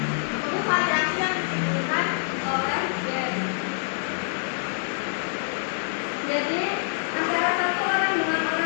itu variasi yang ditimbulkan oleh gen. Jadi, antara satu orang dengan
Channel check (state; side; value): silent; right; 61 dB below the other